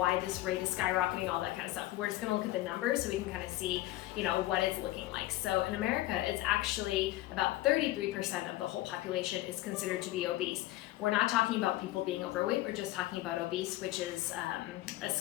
this rate is skyrocketing, all that kind of stuff. We're just gonna look at the numbers so we can kind of see, what it's looking like. So in America, it's actually about 33% of the whole population is considered to be obese. We're not talking about people being overweight, we're just talking about obese, which is a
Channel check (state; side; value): quieter; right; 16.6 dB